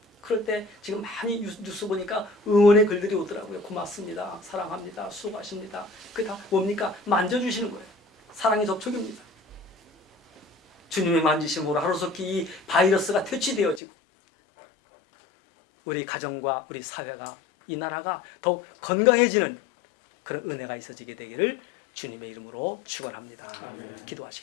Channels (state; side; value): drops out; right; at 13.8 s